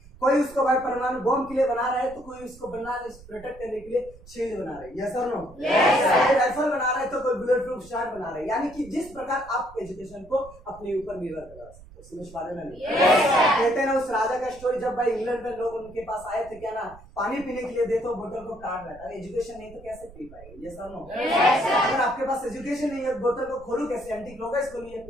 कोई उसको भाई परमाणु बम के लिए बना रहा है तो कोई उसको प्रोटेक्ट करने के लिए शील्ड बना रहे हैं। यस और नो? कोई राइफल बना रहा है तो कोई बुलेट प्रूफ शॉट बना रहे हैं। यानी कि जिस प्रकार आप एजुकेशन को अपने ऊपर निर्भर करा सकते हो। समझ पा रहे ना? कहते हैं ना उस राजा का स्टोरी, जब भाई इंग्लैंड में लोग उनके पास आए थे क्या ना पानी पीने के लिए दे तो बोतल को काट रहा था। एजुकेशन नहीं तो कैसे पी पाएंगे? यस और नो? अगर आपके पास एजुकेशन नहीं है बोतल को खोलू कैसे? एंटी क्लॉकवाइज खोलिए,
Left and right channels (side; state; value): right; noise; rumble, 21 dB below the sound